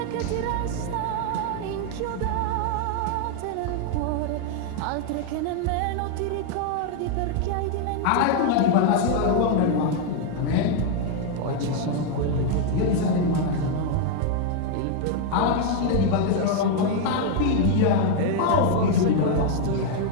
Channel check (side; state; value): both; different; correlation 0.00